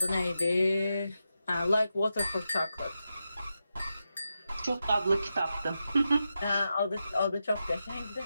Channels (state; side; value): inverted; both; correlation -0.88